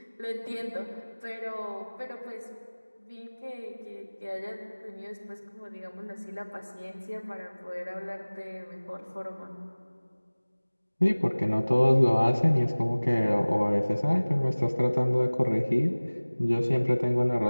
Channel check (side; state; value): both; inverted; correlation -1.00